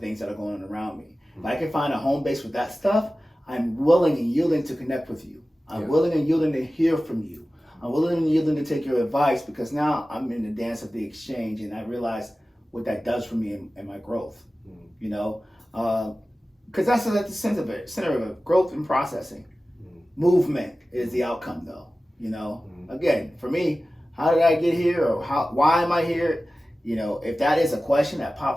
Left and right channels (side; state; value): both; normal; correlation 0.96